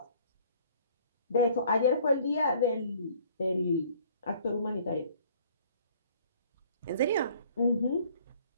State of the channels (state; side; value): inverted; both; correlation -0.55